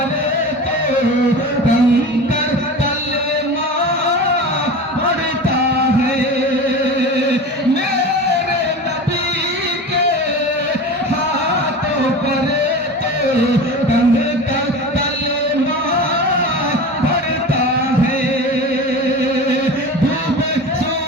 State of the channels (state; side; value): normal; both; correlation 0.32